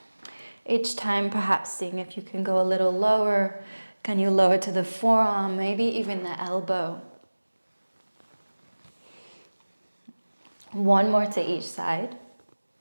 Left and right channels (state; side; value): inverted; both; correlation -1.00